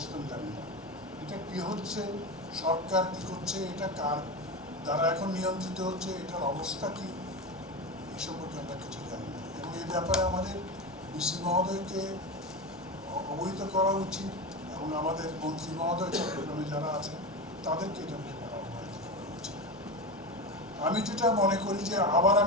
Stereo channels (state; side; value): normal; both; correlation 0.22